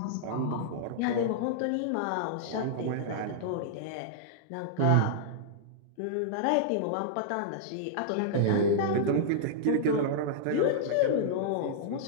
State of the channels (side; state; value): both; different; correlation -0.02